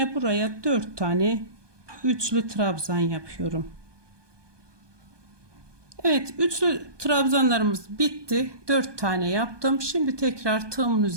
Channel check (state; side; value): late; left; 1.2 ms